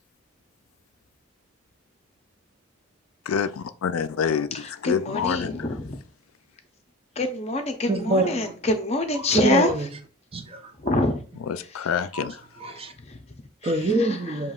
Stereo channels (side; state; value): both; normal; correlation 0.35